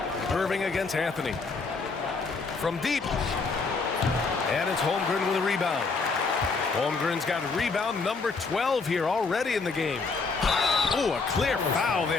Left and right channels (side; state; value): right; quieter; 4.3 dB